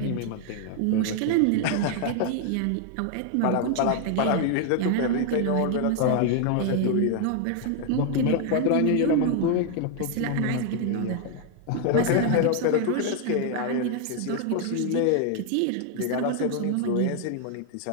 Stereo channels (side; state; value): both; different; correlation 0.00